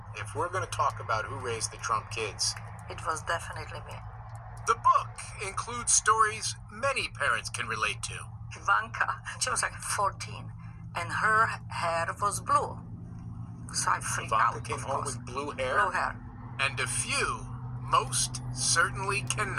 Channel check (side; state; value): both; identical; correlation 1.00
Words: if we're going to talk about who raised the Trump kids, It was definitely me. The book includes stories many parents can relate to. Ivanka, she was like 14, and her hair was blue. So I freaked Ivanka out, came of home course. with blue hair? Blue hair. And a few most certainly